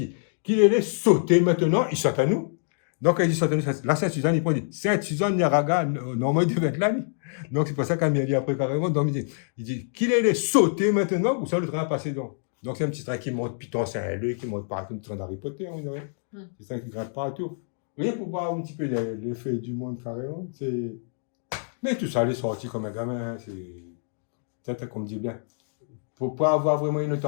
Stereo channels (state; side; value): silent; right; digital silence